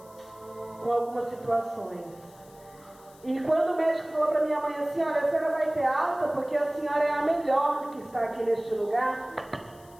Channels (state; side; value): noise; left; hiss, 26 dB below the sound